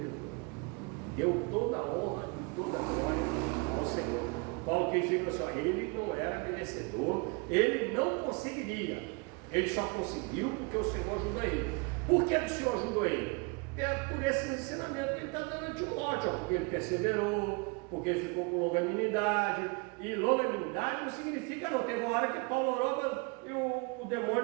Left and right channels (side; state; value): left; quieter; 30.7 dB